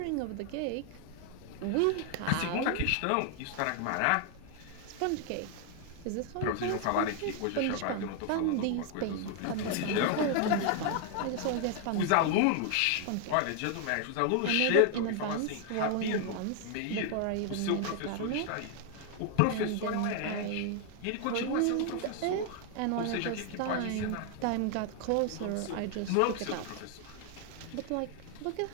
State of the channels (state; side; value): different; both; correlation 0.00